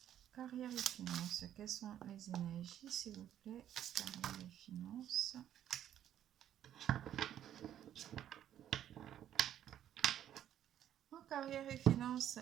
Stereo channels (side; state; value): left; quieter; 10.9 dB